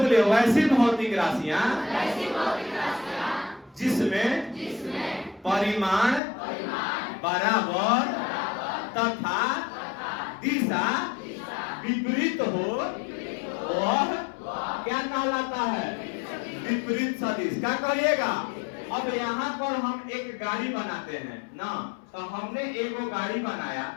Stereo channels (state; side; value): drops out; right; at 6.2 s